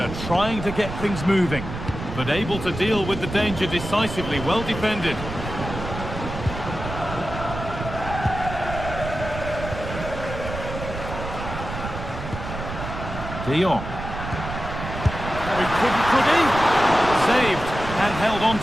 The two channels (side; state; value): right; noise; rumble, 8 dB below the sound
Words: trying to get things moving, but able to deal with the danger decisively. Well defended. De Jong. Could he? Saved and held on